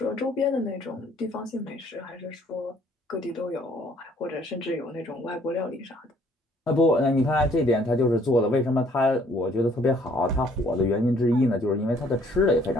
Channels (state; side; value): normal; both; correlation 0.62